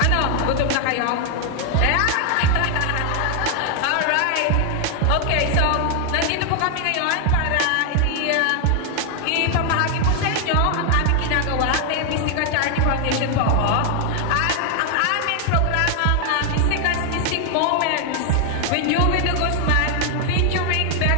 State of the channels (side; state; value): both; different; correlation 0.00